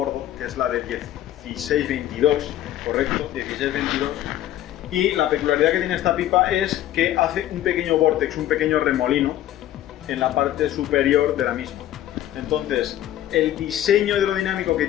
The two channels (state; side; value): quieter; right; 12.8 dB